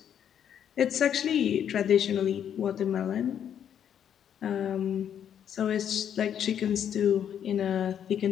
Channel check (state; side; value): quieter; right; 9.2 dB